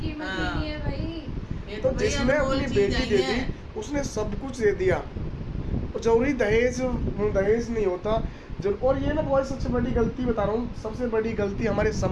ही हाँ। नहीं है भाई। ये तो भैया जिसने अनमोल अपनी चीज बेटी आई दे है। दी उसने सब कुछ दे दिया, और जरूरी दहेज नहीं होता और ये मैं बहुत सबसे बड़ी गलती बता रहा हूँ, सबसे बड़ी गलती हमारे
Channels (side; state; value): both; identical; correlation 1.00